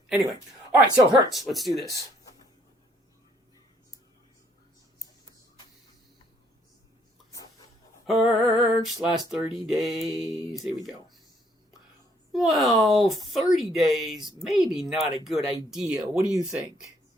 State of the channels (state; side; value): normal; both; correlation 0.66